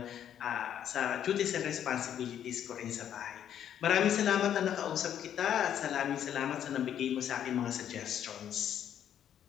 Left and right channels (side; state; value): right; quieter; 9.8 dB